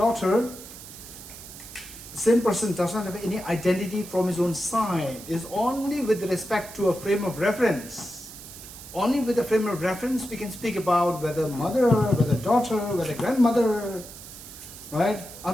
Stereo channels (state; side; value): noise; right; hiss, 15 dB below the sound